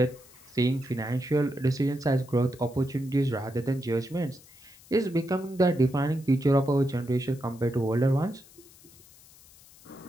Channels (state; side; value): noise; left; hiss, 24 dB below the sound